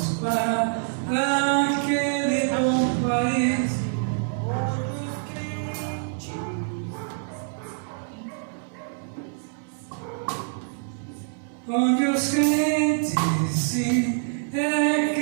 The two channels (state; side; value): silent; left; digital silence